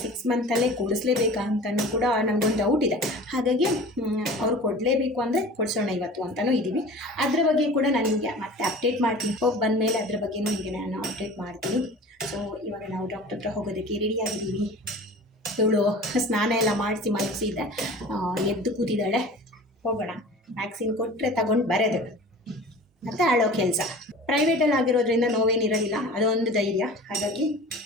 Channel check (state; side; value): normal; both; correlation 0.40